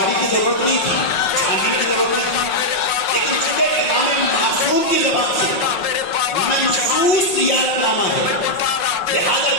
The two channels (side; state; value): right; late; 5.5 ms